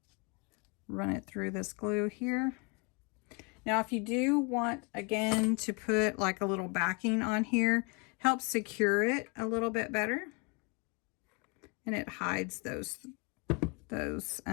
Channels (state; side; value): quieter; right; 31.5 dB